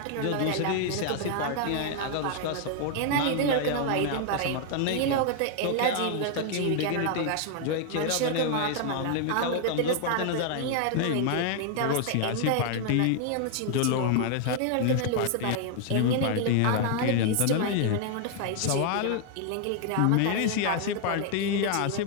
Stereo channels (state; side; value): different; both; correlation 0.00